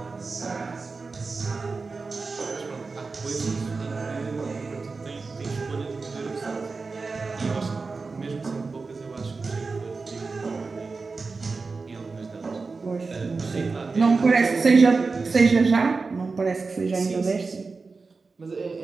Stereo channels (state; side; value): quieter; left; 4.2 dB